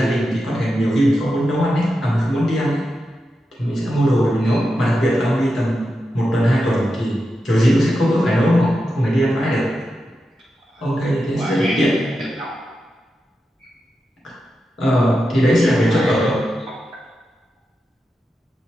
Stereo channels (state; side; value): normal; both; correlation 0.89